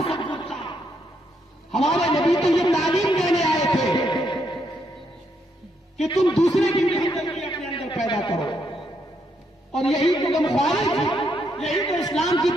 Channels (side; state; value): both; normal; correlation 0.77